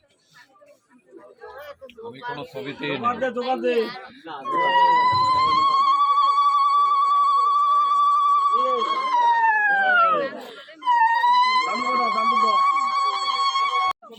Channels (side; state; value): both; identical; correlation 1.00